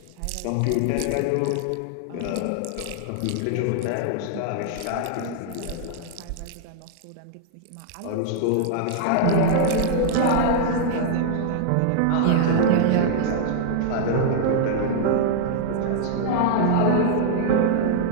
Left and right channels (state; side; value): different; both; correlation -0.01